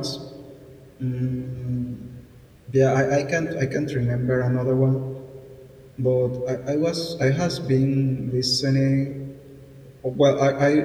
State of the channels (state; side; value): identical; both; correlation 1.00